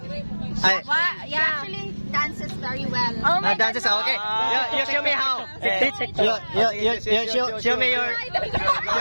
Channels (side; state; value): both; inverted; correlation -1.00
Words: Ay, Yeah. Actually dances very well. Oh my dances, God, okay. no. You show me how. Show me your...